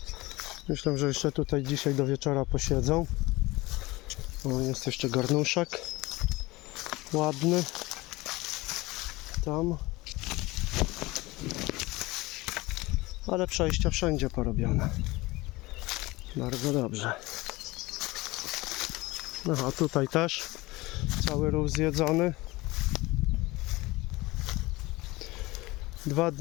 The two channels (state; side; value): quieter; right; 21.1 dB